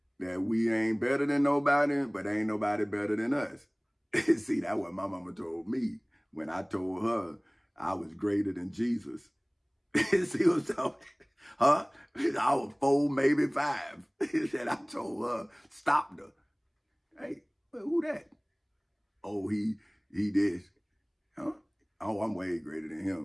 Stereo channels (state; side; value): identical; both; correlation 1.00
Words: that we ain't better than nobody, but ain't nobody better than us. See, that's what my mama told me when I told her I was greater than Jesus. See what I'm talking? Huh? I was 4, maybe 5. Said I told her, stopped her. Hey, who that? Oh, he this. Huh? Oh, I'm way greater than